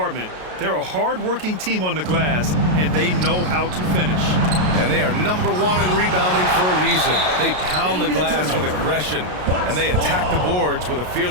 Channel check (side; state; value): left; late; 33 ms